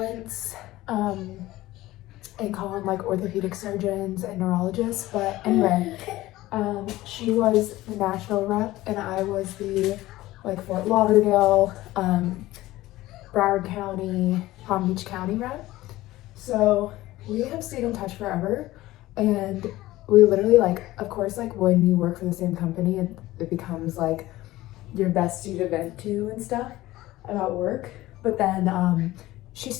and call them like orthopedic surgeons and neurologists. But anyway, she was the Nashville rep and I was the Fort Lauderdale, Broward County, Palm Beach County rep. So we have stayed in touch forever, and we literally of course when you work for the same company, it becomes like your bestie to vent to and stuff about work. But then she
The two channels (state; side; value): quieter; right; 17.0 dB